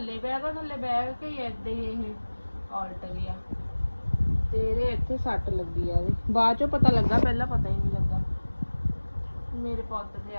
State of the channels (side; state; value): both; inverted; correlation -1.00